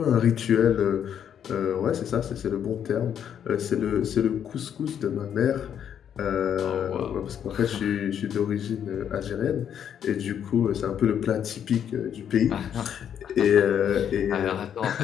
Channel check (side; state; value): right; quieter; 8.9 dB